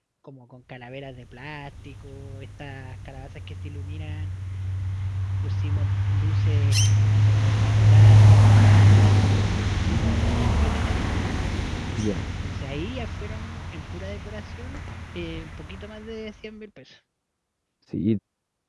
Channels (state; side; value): identical; both; correlation 1.00